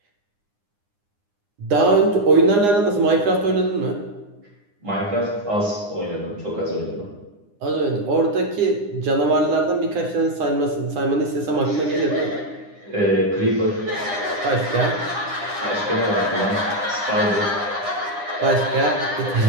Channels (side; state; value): left; late; 9.8 ms